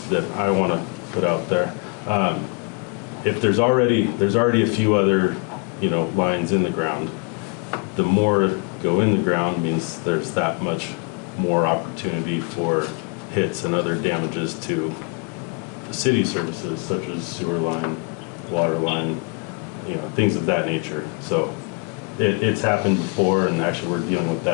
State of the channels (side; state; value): right; quieter; 34.0 dB